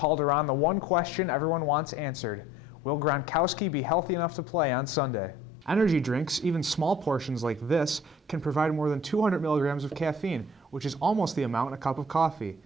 the one question everyone wants answered: will Gronkowski be healthy enough to play on Sunday? Energy drinks, even small portions like this, can provide more than 200 milligrams of caffeine, which is almost the amount in a cup of coffee.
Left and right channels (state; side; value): normal; both; correlation 0.53